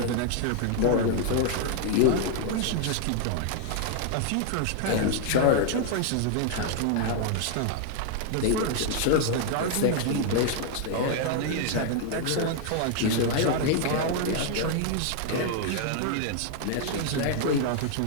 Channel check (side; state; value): both; different; correlation 0.00